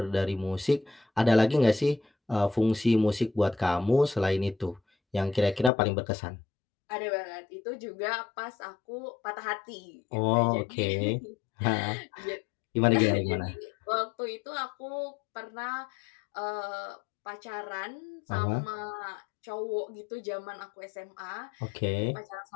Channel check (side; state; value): right; drops out; at 5.7 s